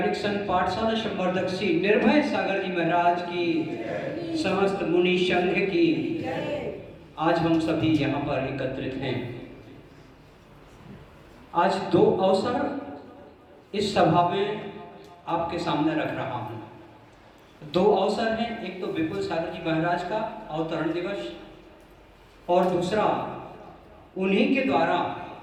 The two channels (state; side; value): identical; both; correlation 1.00